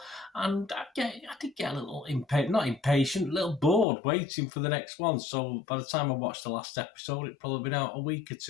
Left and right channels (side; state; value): right; drops out; at 3.9 s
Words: And I did get a little impatient, a little bored waiting for the next one. So by the time I watched the last episode, it'd probably been out a week or